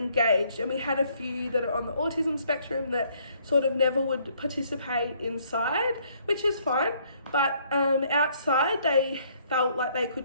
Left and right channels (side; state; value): both; inverted; correlation -0.65